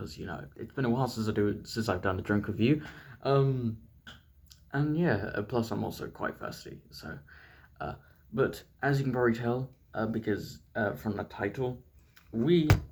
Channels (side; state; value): both; identical; correlation 1.00